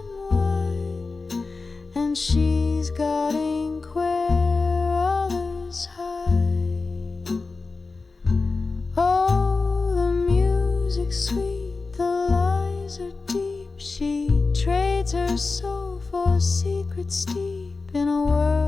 wide, and she's got ink where others hide. Oh, the music's sweet, the lies are deep. She trades her soul for secrets deep. In a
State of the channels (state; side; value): quieter; right; 4.0 dB